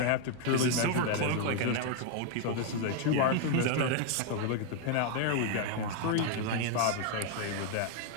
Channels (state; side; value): different; both; correlation 0.00